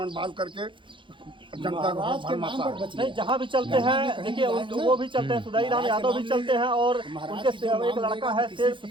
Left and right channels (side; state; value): left; late; 0.24 ms